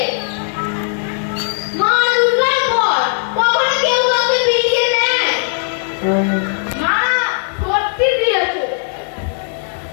মা দুর্গার ঘর কখনো কেউ কাউকে বিলিয়ে দেয় না সত্যি দিয়েছে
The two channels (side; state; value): right; silent; digital silence